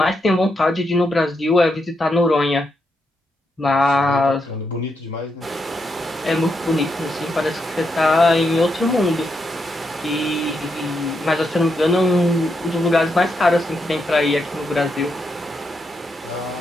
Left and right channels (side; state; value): both; normal; correlation 0.82